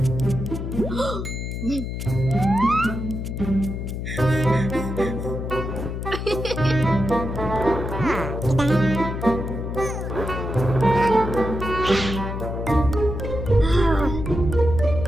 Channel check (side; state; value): left; noise; hum, 5 dB below the sound